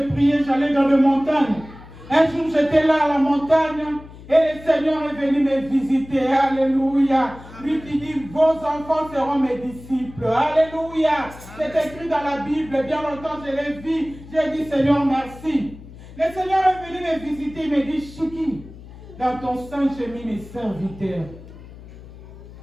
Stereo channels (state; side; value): noise; left; hum, 17 dB below the sound